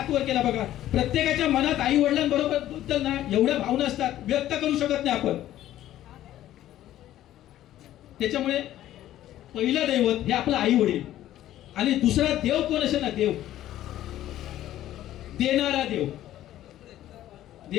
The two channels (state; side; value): quieter; right; 13.2 dB